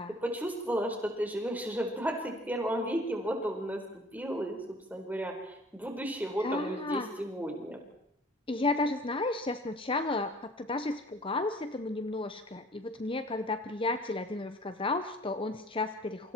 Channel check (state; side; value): normal; both; correlation 0.51